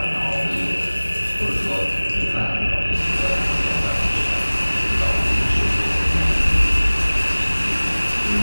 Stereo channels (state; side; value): inverted; both; correlation -1.00